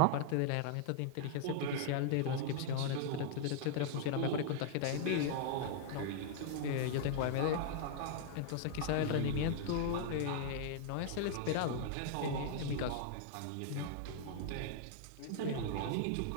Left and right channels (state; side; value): different; both; correlation -0.01